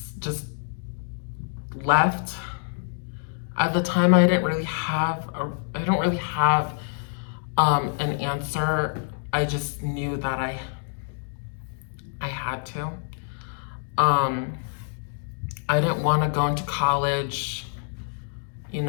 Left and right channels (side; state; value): right; silent; digital silence